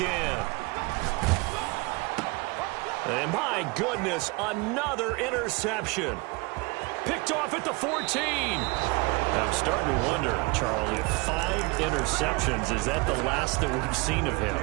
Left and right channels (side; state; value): left; quieter; 26.5 dB